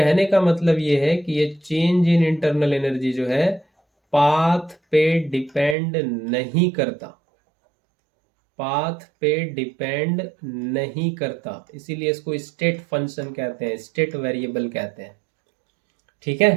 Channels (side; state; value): left; drops out; at 5.8 s